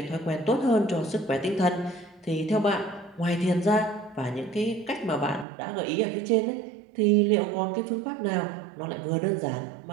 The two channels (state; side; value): drops out; left; at 5.5 s